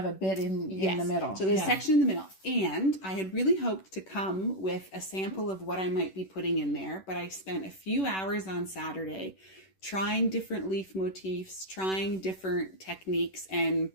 a bit in the middle. So there's a section in the middle. And I had really hoped to come with a sample of what I might be putting in there, but I spent a few hours on Saturday trying different leaf motifs, trying different techniques, and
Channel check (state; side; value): late; right; 11 ms